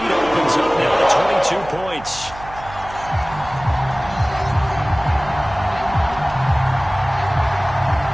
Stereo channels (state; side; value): noise; right; hum, 16 dB below the sound